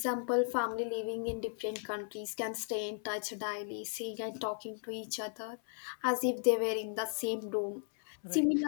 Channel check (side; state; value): right; silent; 54 dB below the other